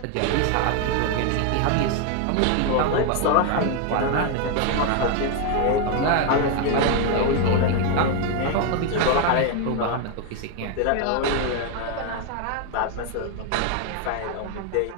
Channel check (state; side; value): different; both; correlation 0.01